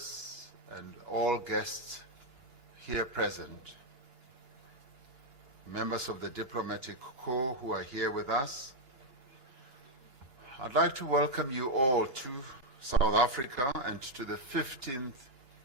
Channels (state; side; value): late; right; 2.9 ms